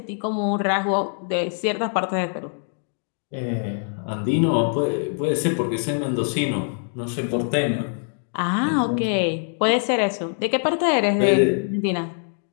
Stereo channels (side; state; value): right; silent; 63 dB below the other